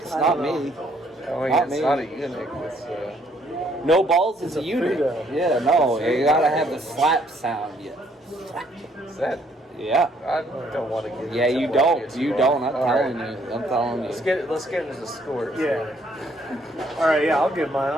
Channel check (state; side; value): normal; both; correlation 0.66